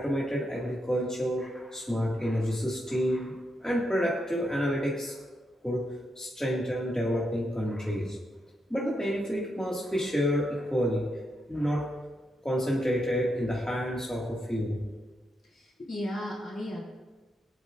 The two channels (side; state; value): both; normal; correlation 0.82